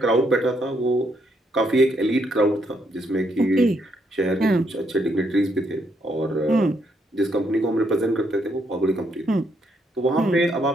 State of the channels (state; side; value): normal; both; correlation 0.74